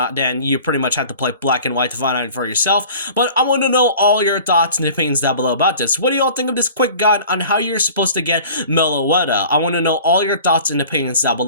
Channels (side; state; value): both; inverted; correlation -0.44